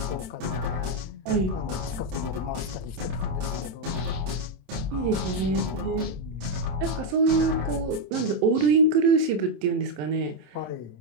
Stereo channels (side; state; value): left; late; 27 ms